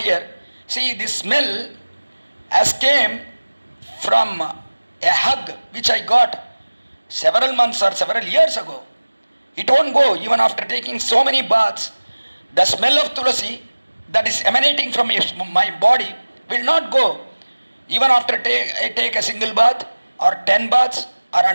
here. See, this smell has came from a hug which I got several months or several years ago. It won't go even after taking so many baths. The smell of Tulasi that is emanating from my body will not go. Even after I take a single bath or 10 baths or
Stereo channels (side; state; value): both; inverted; correlation -1.00